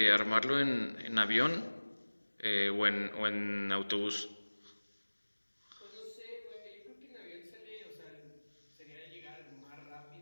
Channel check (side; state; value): both; inverted; correlation -1.00